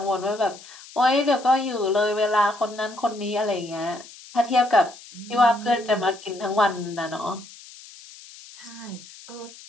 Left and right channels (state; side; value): noise; left; hiss, 19 dB below the sound